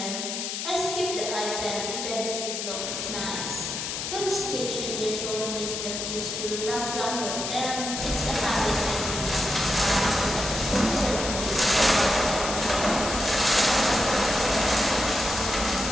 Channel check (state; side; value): noise; left; hiss, 4 dB below the sound